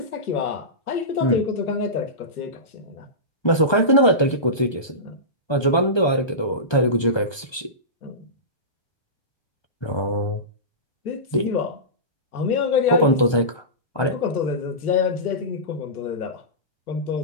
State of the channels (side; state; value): right; late; 1.2 ms